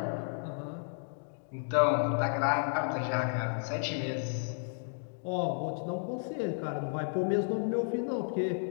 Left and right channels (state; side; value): silent; right; digital silence